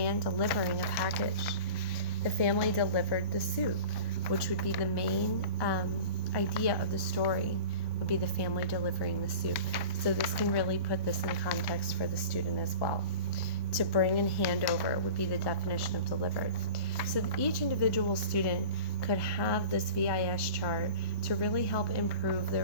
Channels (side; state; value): right; late; 1.1 ms